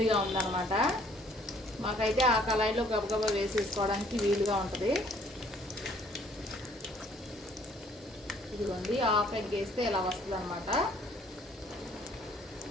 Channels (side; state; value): both; normal; correlation 0.60